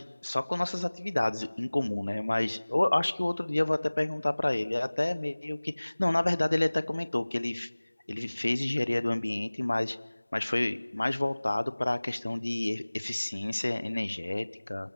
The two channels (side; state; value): both; inverted; correlation -1.00